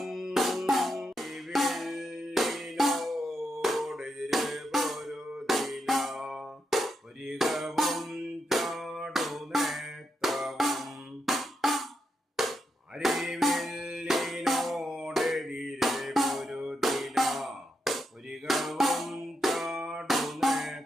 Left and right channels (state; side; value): normal; both; correlation 0.83